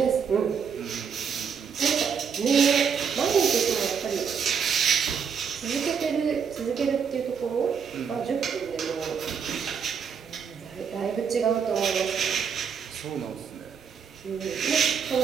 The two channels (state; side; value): quieter; left; 6.7 dB